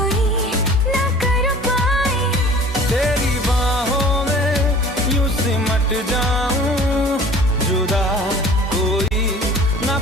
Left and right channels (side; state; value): both; normal; correlation 0.46